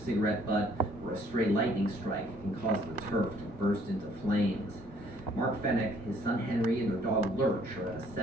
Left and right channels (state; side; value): normal; both; correlation 0.61